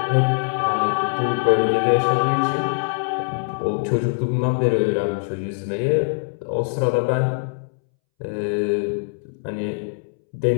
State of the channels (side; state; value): right; silent; 64 dB below the other